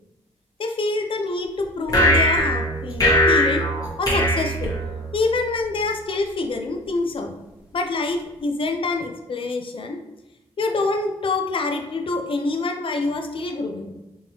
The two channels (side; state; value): both; normal; correlation 0.41